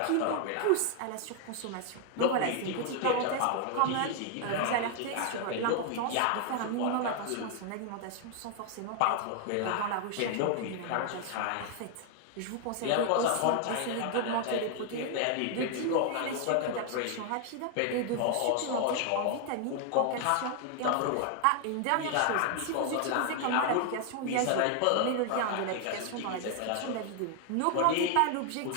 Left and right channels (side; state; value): both; different; correlation 0.00